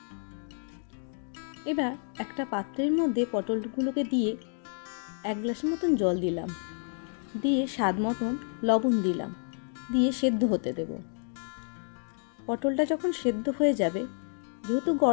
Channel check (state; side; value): silent; right; 58 dB below the other